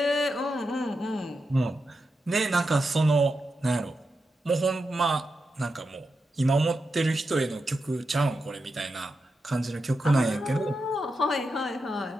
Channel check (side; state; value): both; normal; correlation 0.88